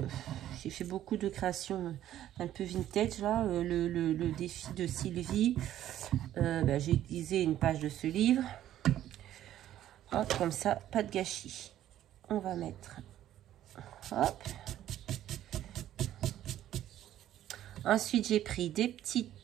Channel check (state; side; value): quieter; left; 12.3 dB